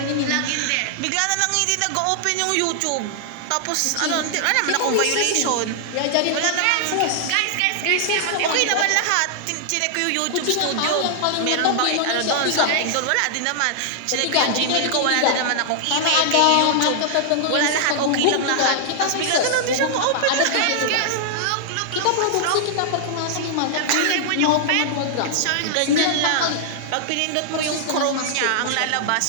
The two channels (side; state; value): both; different; correlation -0.01